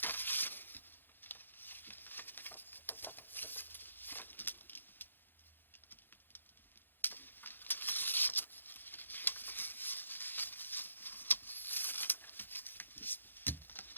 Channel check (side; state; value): right; late; 0.097 ms